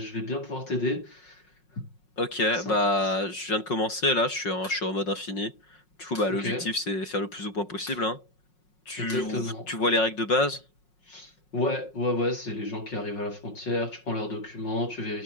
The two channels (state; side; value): late; right; 5.5 ms